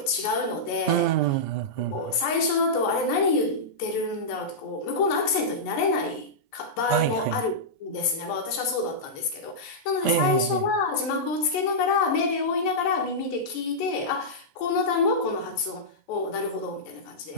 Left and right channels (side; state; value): right; late; 14 ms